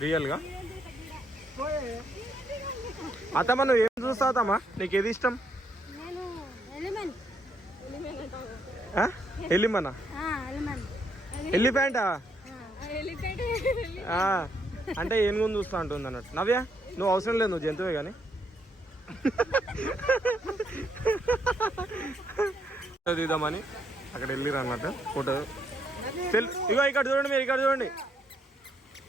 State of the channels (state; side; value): normal; both; correlation 0.73